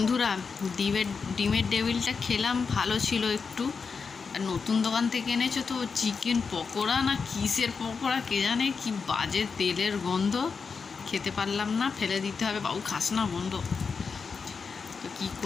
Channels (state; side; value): quieter; right; 5.3 dB